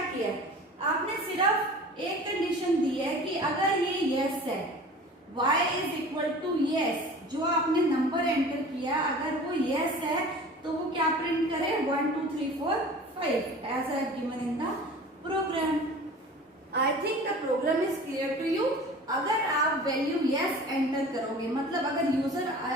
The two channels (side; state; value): both; normal; correlation 0.41